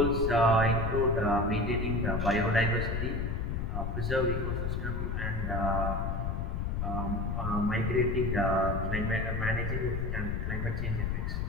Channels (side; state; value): left; noise; rumble, 1 dB below the sound